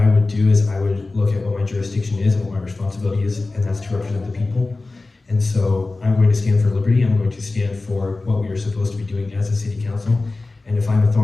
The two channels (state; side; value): quieter; right; 3.4 dB